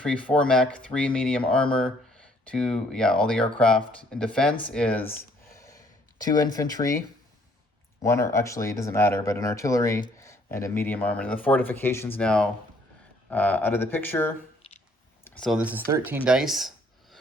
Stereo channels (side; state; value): both; normal; correlation 0.63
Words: 4 mech, 3 medium armor, 2, all the aircraft. In defense is 2 infantry, 1, or actually it doesn't matter, but an artillery and a medium armor. And the fortifications now out of the picture. So this is 13 dice,